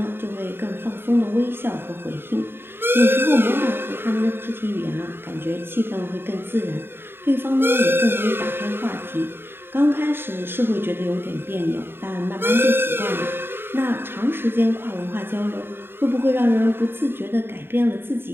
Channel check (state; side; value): late; left; 0.11 ms